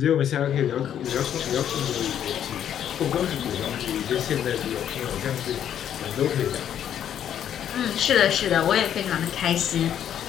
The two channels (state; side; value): quieter; right; 9.8 dB